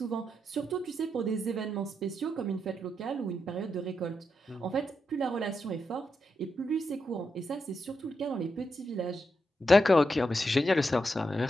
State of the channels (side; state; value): both; normal; correlation 0.84